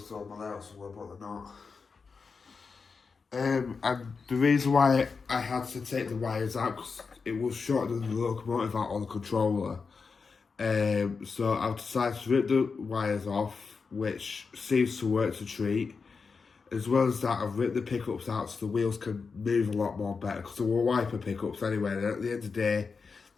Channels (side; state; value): right; quieter; 5.0 dB